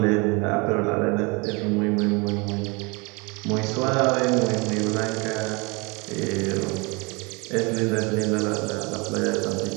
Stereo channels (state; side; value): quieter; left; 28.5 dB